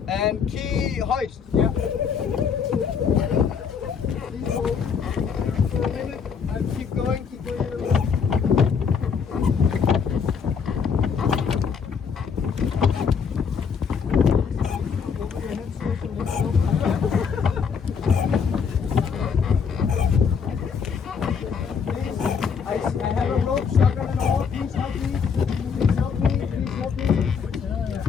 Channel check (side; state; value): right; quieter; 6.3 dB